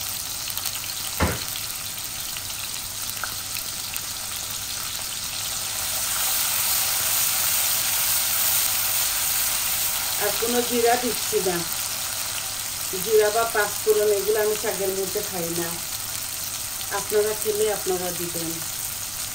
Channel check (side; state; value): right; noise; rumble, 17 dB below the sound